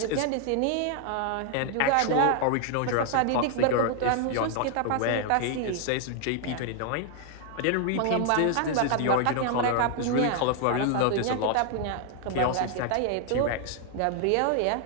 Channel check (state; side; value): different; both; correlation 0.00